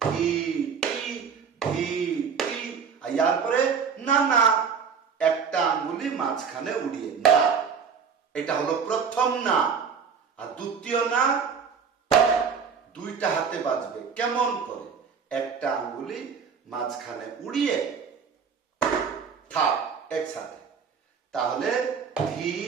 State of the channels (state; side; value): quieter; left; 6.2 dB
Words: ধি টি, ধি টি। আর ইয়ার পরে না না, একটা আঙ্গুলি মাঝখানে উড়িয়ে না। এটা হলো প্রথম না। আর দ্বিতীয় না, দুইটা হাতে বাজবে। কেমন করে? একটা আঙ্গুলি মাঝখানে উড়িয়ে থাক একসাথে। তাহলে ধি